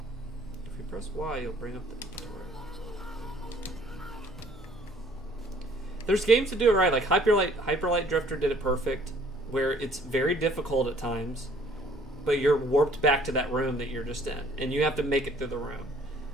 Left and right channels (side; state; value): both; normal; correlation 0.58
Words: If you press Y, you'll bring up the inventory. There's games to do it right. Like Hyperlight Drifter did it perfect, where it's very difficult at times, but you're warped back to that room that you're just in, and you have to make it through the room.